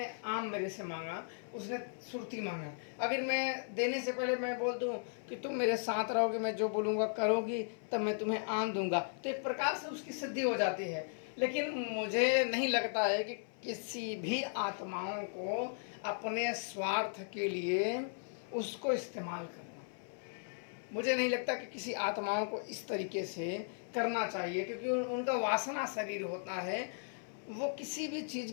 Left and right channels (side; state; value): right; silent; 53 dB below the other